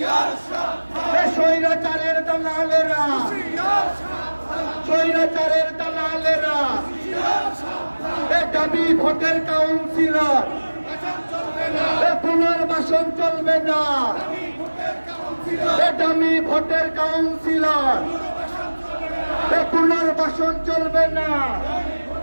সাবধান, স্বৈরাচারের দালালেরা হুঁশিয়ার সাবধান, স্বৈরাচারের দালালেরা হুঁশিয়ার সাবধান, দামি ভোটের কাউন্সিলর পুনর্বাসন চলবে না, পুনর্বাসন চলবে না, দামি ভোটের কাউন্সিলর দামি ভোটের কাউন্সিলর পুনর্বাসন চলবে না,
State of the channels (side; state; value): both; inverted; correlation -1.00